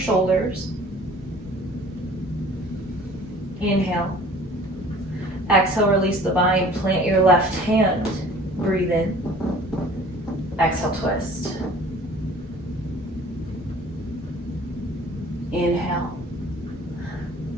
Inhale. Exhale, release the bind. Plant your left hand. Breathe in. Exhale, twist. Inhale.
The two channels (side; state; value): both; normal; correlation 0.50